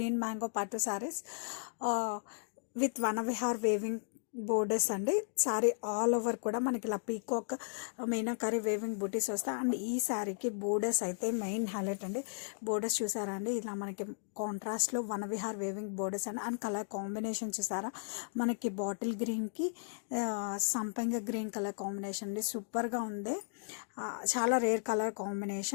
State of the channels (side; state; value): right; silent; digital silence